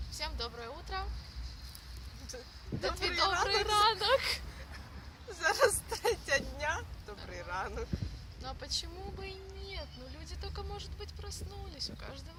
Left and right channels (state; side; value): identical; both; correlation 1.00